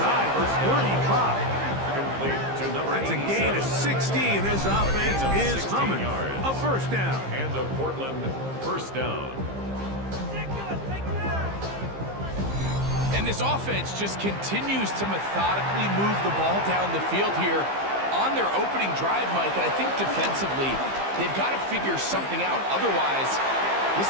the 35. That's a gain of 16. This offense is humming. A first down. And the Portland first down. And this offense just continues to methodically move the ball down the field here on their opening drive, Mike. And I think defensively, they've got to figure something out. Otherwise, this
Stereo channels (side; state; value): left; late; 15 ms